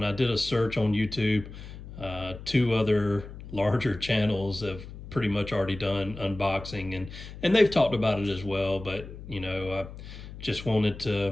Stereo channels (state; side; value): noise; left; hum, 13 dB below the sound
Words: I did a search on YouTube, two other larger channels have pretty much already done unboxing, and they've talked about it as well. But I just wanted